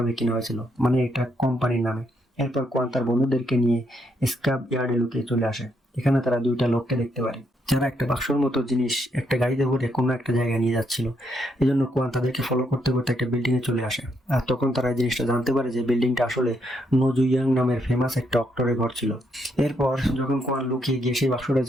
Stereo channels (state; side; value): normal; both; correlation 0.76